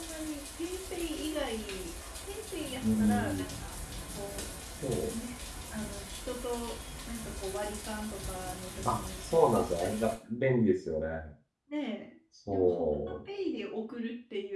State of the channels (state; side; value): identical; both; correlation 1.00